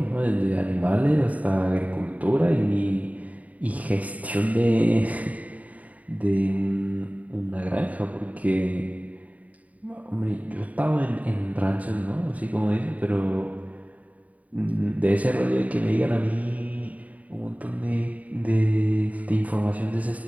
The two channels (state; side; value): late; left; 0.071 ms